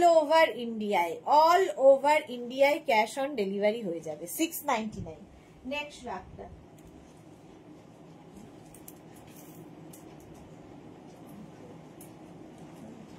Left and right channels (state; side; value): identical; both; correlation 1.00